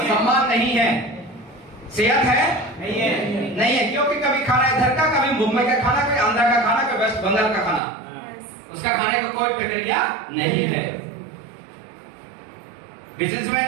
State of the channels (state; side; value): drops out; left; at 7.8 s